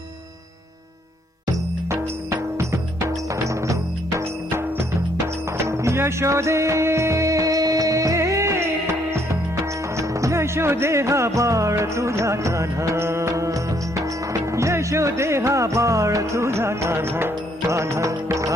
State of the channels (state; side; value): normal; both; correlation 0.69